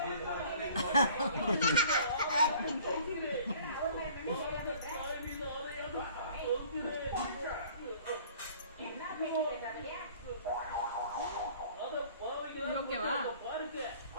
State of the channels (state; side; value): inverted; both; correlation -0.52